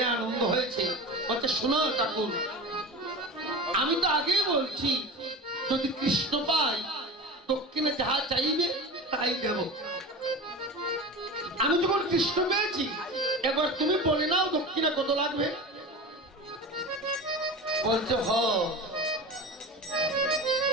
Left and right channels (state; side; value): normal; both; correlation 0.31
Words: আনন্দ হয়েছে, বলছে শোনো ঠাকুর, আমি তো আগেই বলছি যদি কৃষ্ণ পাই দক্ষিণে যাহা চাইবে তাই দেব। আমি যখন কৃষ্ণ পেয়েছি এবার তুমি বলে নাও দক্ষিণা কত লাগবে। বলছে হ